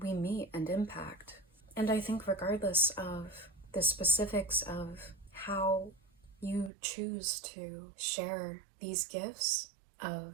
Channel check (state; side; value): drops out; left; at 6.7 s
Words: meet and impact. And I think regardless of the specifics of how you choose to share these gifts